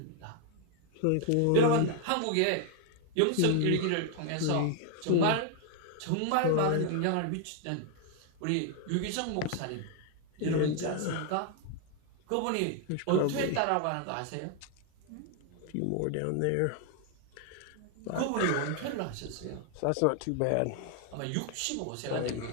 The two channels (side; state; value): both; different; correlation 0.00